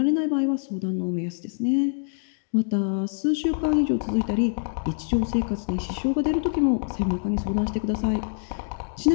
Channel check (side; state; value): right; silent; digital silence